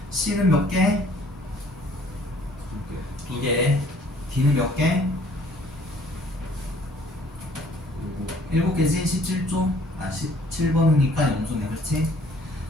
C는 몇 개? 2개. D는 몇 개? 7개지? 17조? 아, 17번이니까 0조네, 그렇지?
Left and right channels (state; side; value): normal; both; correlation 0.57